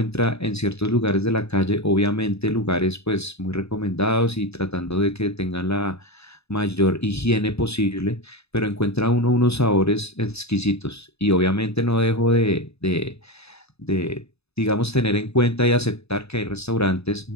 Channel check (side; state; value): right; late; 0.79 ms